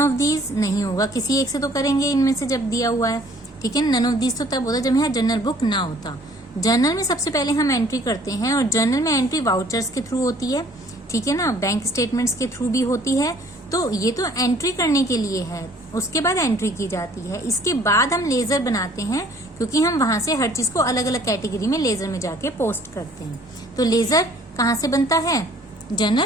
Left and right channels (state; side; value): normal; both; correlation 0.56